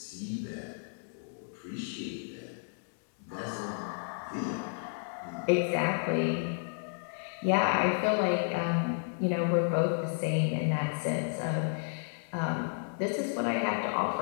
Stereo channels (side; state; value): right; silent; digital silence